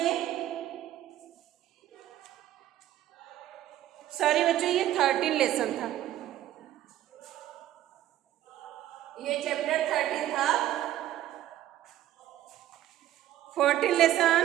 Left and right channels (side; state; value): left; quieter; 13.1 dB